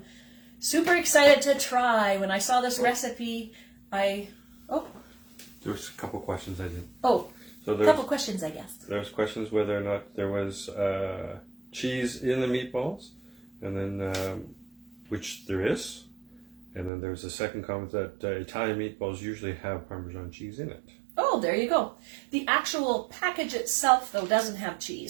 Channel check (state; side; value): drops out; left; at 16.9 s